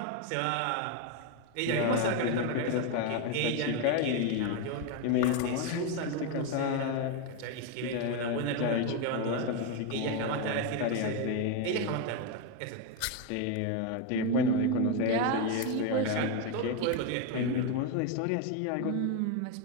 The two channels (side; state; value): both; different; correlation 0.02